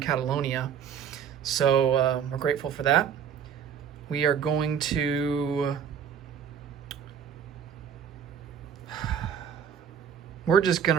So we're grateful for that. We are going to we're just going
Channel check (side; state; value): left; quieter; 8.0 dB